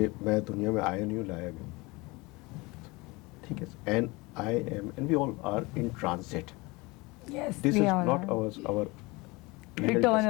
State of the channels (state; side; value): quieter; right; 24.1 dB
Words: मैं दुनिया में आया नहीं हूँ, लाया भी. ठीक है. And I am and we all are in transit. Yes. This we is all not are. Our